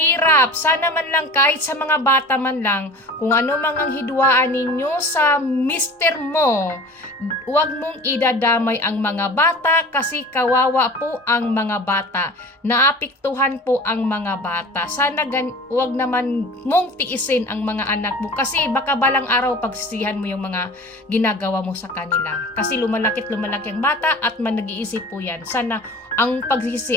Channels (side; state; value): both; normal; correlation 0.39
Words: sana man lang kahit sa mga bata man lang, kung ano mang ang hidwaan ninyo sa mister mo, huwag mong idadamay ang mga bata kasi kawawa po ang mga bata. Naapektuhan po ang mga bata. Sana huwag naman mong tiisin ang mga anak mo kasi baka balang araw pagsisihan mo yung mga ginagawa mo sa kanila. Kasi lumalaki ang bata at nag-iisip po yan. Sana ang